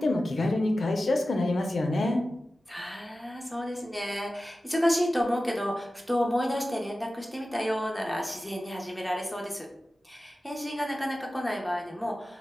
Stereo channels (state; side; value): normal; both; correlation 0.95